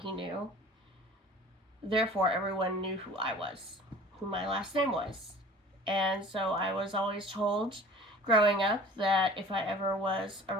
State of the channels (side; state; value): both; normal; correlation 0.44